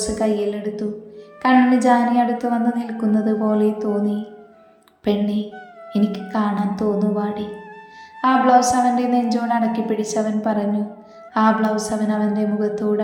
കയ്യിലെടുത്തു. കണ്ണിന് ജാനി അടുത്ത് വന്ന് നിൽക്കുന്നത് പോലെ തോന്നി. പെണ്ണെ, എനിക്ക് കാണാൻ തോന്നുവാടി. ആ ബ്ലൗസ് അവൻ്റെ നെഞ്ചോട് അടക്കി പിടിച്ചവൻ പറഞ്ഞു. ആ ബ്ലൗസ് അവൻ്റെ മുഖത്തോട്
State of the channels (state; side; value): identical; both; correlation 1.00